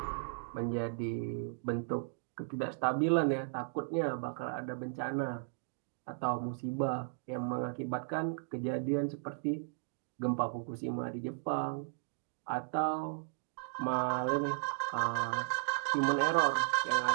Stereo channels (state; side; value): silent; left; digital silence